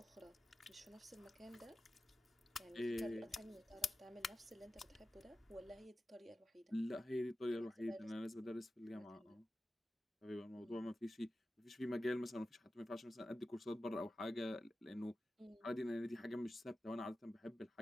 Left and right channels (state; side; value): normal; both; correlation 0.94